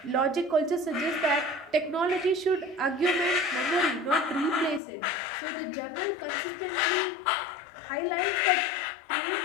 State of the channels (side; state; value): right; drops out; at 4.8 s